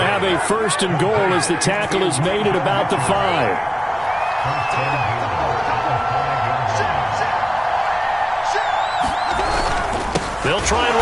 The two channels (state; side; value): identical; both; correlation 1.00